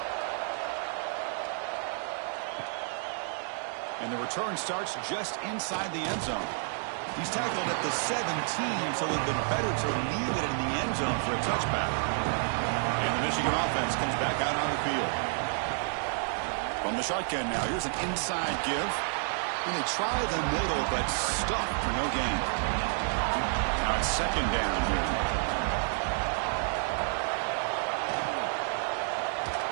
And the return starts just inside the end zone. He's tackled at the 17, so it would have been better to leave it in the end zone for a touchback. And the Michigan offense comes back out on the field. From the shotgun now, here's an inside give. And they try the middle, but stuck for no gain. Now it's second down here.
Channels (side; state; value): left; silent; 58 dB below the other